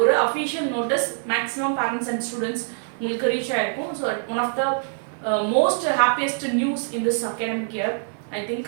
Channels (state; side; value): silent; left; 63 dB below the other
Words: ஒரு official notice maximum parents and students உங்களுக்கு reach ஆயிருக்கும். So, one of the most happiest news in this academic year, I